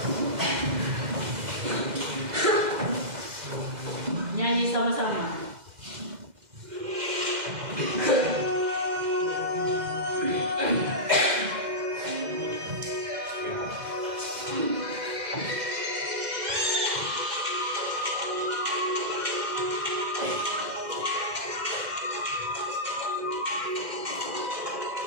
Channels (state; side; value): late; left; 2.0 ms